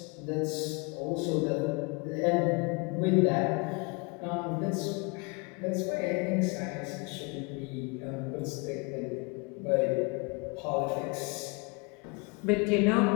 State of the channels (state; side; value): quieter; right; 30.8 dB